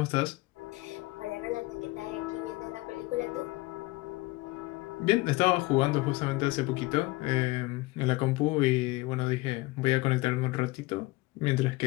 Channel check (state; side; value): quieter; right; 21.4 dB